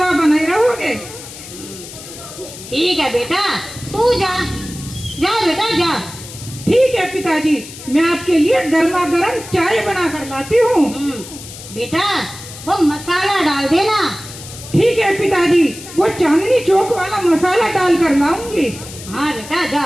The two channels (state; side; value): noise; left; hiss, 14 dB below the sound